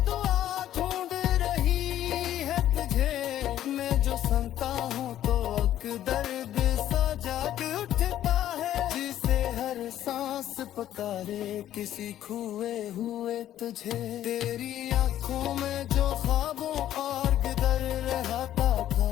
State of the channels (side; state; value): right; quieter; 12.1 dB